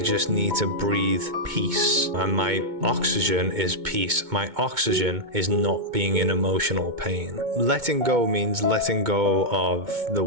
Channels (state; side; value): late; left; 2.2 ms